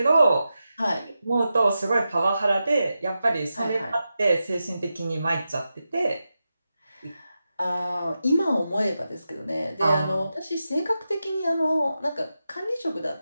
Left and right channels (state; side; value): inverted; both; correlation -0.90